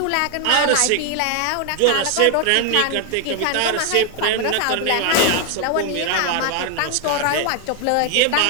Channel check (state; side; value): different; both; correlation 0.00